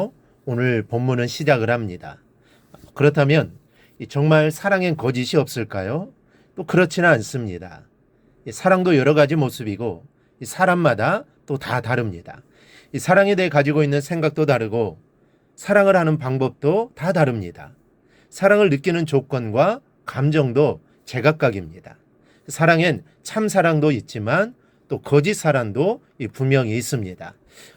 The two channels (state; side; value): identical; both; correlation 1.00